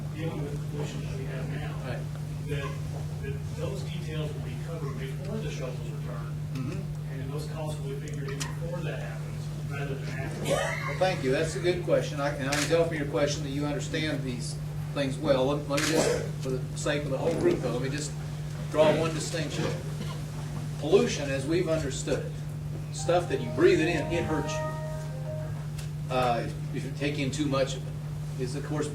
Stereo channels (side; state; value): both; identical; correlation 1.00